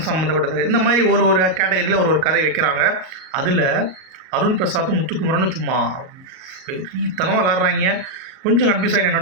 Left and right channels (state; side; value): late; left; 38 ms